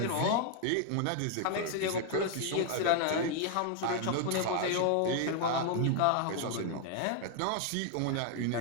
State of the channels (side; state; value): both; different; correlation 0.00